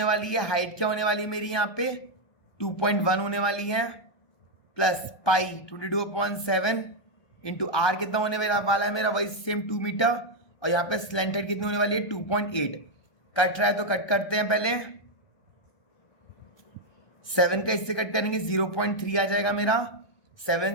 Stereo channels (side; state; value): right; late; 1.2 ms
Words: वाली है, हाइट क्या होने वाली है मेरी यहाँ पे 2.1 होने वाली है, प्लस पाई 22/7 इंटू आर कितना होने वाला है मेरा वही सेम 2 मीटर, और यहाँ पे स्लैंट हेड कितनी होने वाली है 2.8। कट रहा है तो कट करते हैं, पहले 7 का इससे कट करेंगे 0.3 आ जाएगा मेरा,